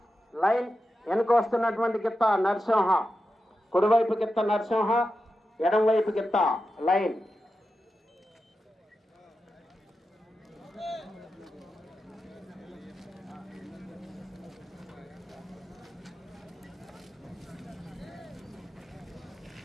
లైన్, వెనుక వస్తున్నటువంటి గిత్త నరసింహ. కుడివైపు గిత్త నరసింహ, ఎడంవైపు గిత్త లైన్.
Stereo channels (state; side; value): normal; both; correlation 0.90